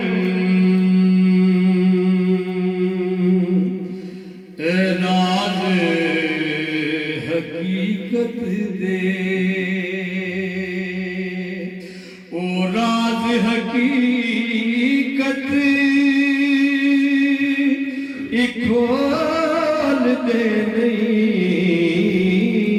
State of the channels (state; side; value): identical; both; correlation 1.00